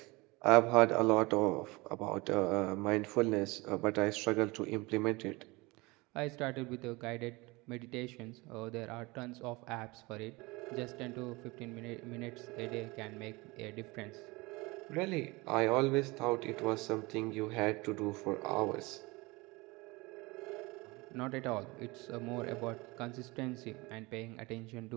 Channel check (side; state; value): left; quieter; 23.9 dB